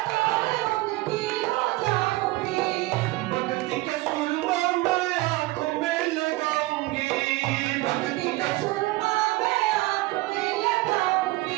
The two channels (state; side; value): quieter; left; 20.5 dB